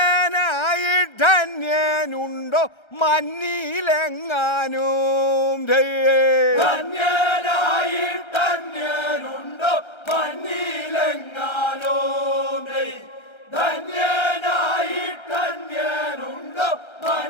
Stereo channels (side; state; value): right; late; 1.3 ms